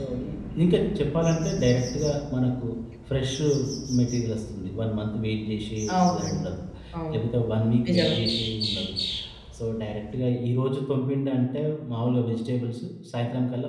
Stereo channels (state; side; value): identical; both; correlation 1.00